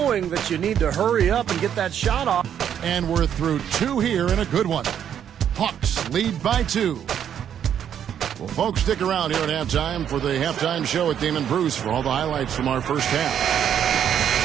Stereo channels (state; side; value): quieter; left; 9.2 dB